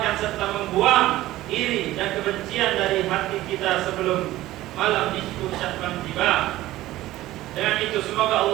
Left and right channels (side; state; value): left; quieter; 16.0 dB